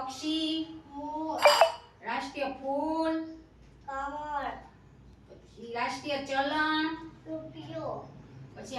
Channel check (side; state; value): both; identical; correlation 1.00